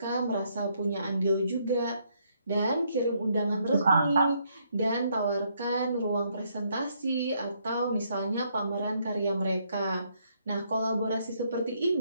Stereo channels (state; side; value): inverted; both; correlation -0.72